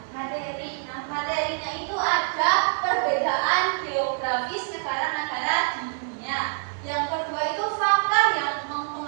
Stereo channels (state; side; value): silent; left; 57 dB below the other